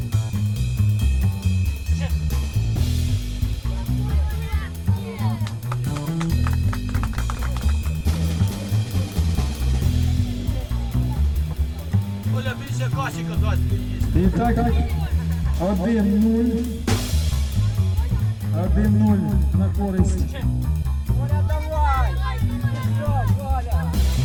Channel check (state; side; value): identical; both; correlation 1.00